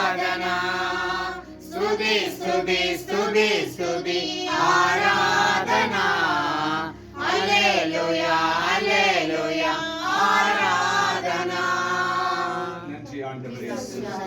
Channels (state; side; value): identical; both; correlation 1.00